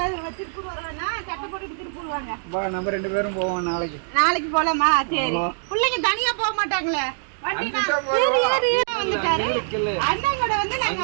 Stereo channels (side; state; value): left; silent; digital silence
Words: திருப்பூர் வருவானா சட்டை போட்டுட்டு திருப்பூர் வாங்க. நம்ம 2 பேரும் போவோம் நாளைக்கு. நாளைக்கு போலாமா? சரி. பிள்ளைங்க தனியா போக மாட்டாங்களே. வந்துட்டாரு அண்ணன் கூட வந்து நாங்க